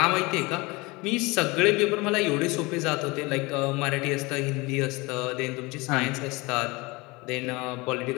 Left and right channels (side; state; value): right; quieter; 24.3 dB